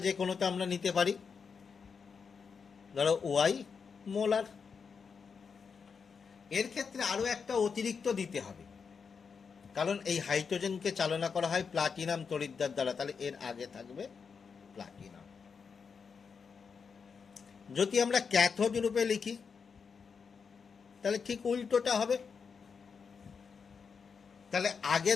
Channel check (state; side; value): quieter; right; 5.8 dB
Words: যে কোনোটা আমরা নিতে পারি, ধরো Y মোলার। এর ক্ষেত্রে আরো একটা অতিরিক্ত দিতে হবে, কারণ এই হাইড্রোজেনকে চালনা করা হয় প্লাটিনাম তড়িৎদ্বার দ্বারা, তাহলে এর আগে থাকবে প্লাটিনাম। যদি আমরা ক্যাথোড রূপে লিখি, তাহলে ঠিক উল্টোটা হবে। তাহলে আগে